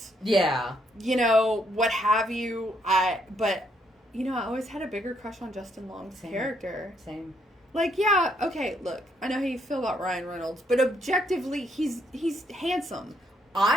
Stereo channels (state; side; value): normal; both; correlation 0.72